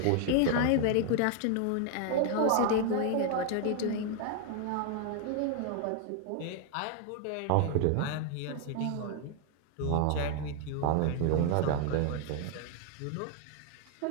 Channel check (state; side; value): different; both; correlation 0.00